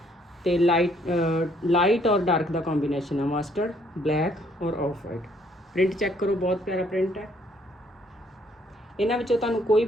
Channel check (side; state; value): both; normal; correlation 0.66